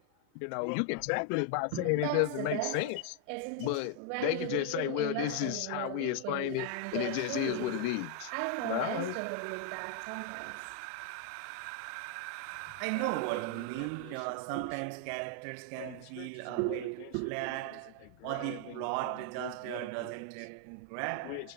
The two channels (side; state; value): both; different; correlation 0.00